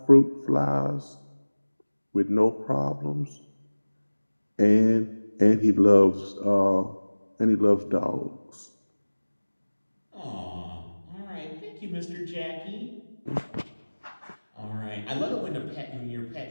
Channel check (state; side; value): inverted; both; correlation -1.00